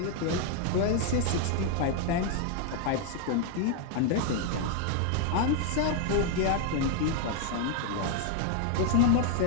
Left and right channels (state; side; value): different; both; correlation 0.00